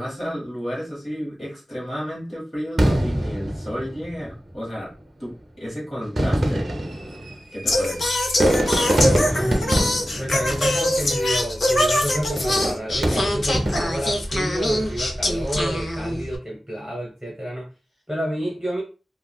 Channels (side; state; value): both; normal; correlation 0.93